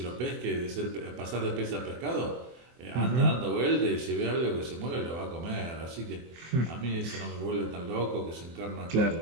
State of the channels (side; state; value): left; late; 24 ms